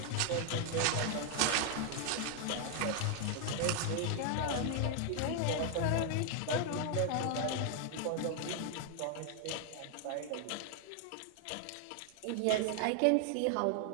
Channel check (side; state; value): both; different; correlation 0.00